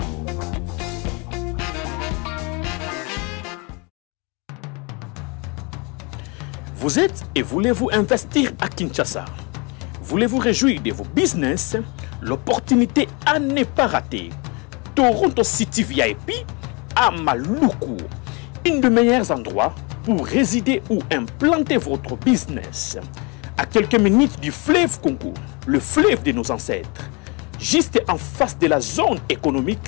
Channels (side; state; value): right; quieter; 30.3 dB